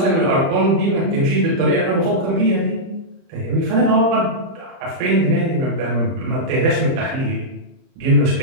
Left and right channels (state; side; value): late; left; 31 ms